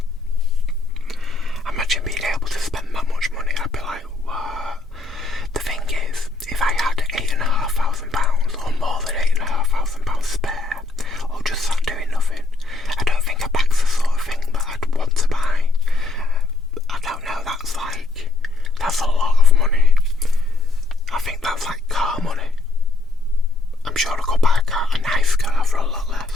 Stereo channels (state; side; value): quieter; right; 3.4 dB